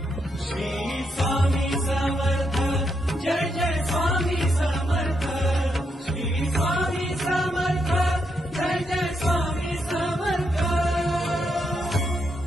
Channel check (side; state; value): both; normal; correlation 0.80